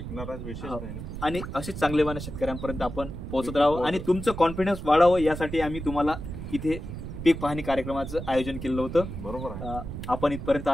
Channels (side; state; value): right; noise; rumble, 8 dB below the sound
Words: आणि असेच चांगले वाण शेतकऱ्यांपर्यंत आपण पोहोचत राहावं आणि तुमचं कॉन्फिडन्स वाढावं यासाठी आम्ही तुम्हाला इथे पीक पाहणी कार्यक्रमाचं आयोजन केलं होतं। बरोबर आहे। आपण इथपर्यंत